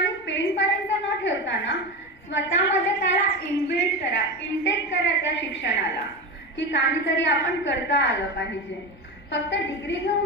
पेन पर्यंत न ठेवताना स्वतःमध्ये त्याला इनबिल्ट करा, इंटेक करा त्या शिक्षणाला की काहीतरी आपण करता आलं पाहिजे. फक्त डिग्री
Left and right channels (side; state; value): left; noise; rumble, 28 dB below the sound